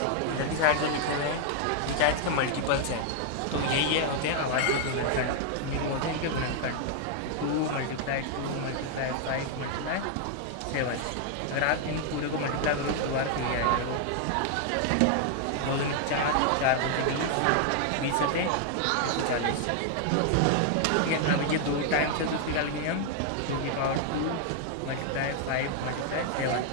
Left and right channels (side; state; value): both; different; correlation 0.00